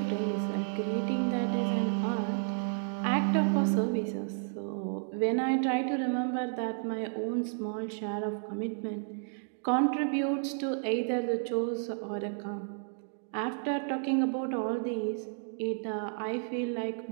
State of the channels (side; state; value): left; silent; digital silence